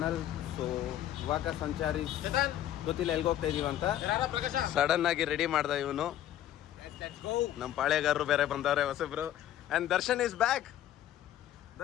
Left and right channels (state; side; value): quieter; right; 12.1 dB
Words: So ಇವಾಗ ಸಂಚಾರಿ ಗೊತ್ತಿಲ್ಲ ಎಲ್ಲಿಗೆ ಹೋಗ್ತಾ ಇದೀವಿ ಅಂತ ಸಡನ್ ಆಗಿ ರೆಡಿ ಮಾಡ್ದ ಇವನು. ನಮ್ಮ ಪಾಳೆಗಾರರು ಬೇರೆ ಬಂದವ್ರೆ ಹೊಸಬ್ರು. And Darshan is back.